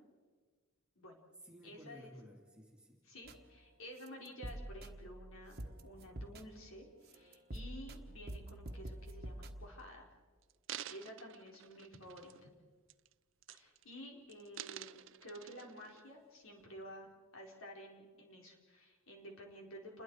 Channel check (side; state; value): both; normal; correlation 0.42